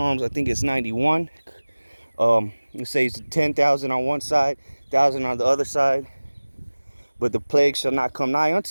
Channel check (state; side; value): inverted; both; correlation -1.00